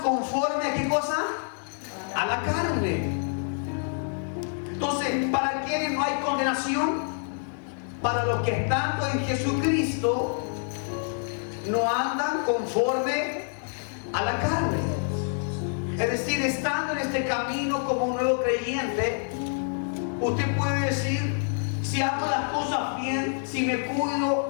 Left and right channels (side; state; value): right; silent; 60 dB below the other